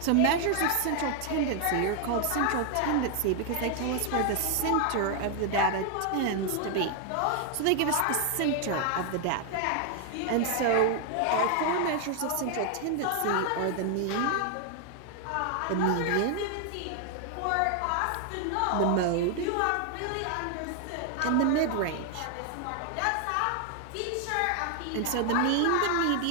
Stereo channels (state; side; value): different; both; correlation 0.00